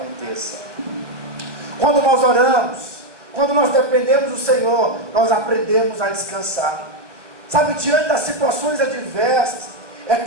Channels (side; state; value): left; late; 1.1 ms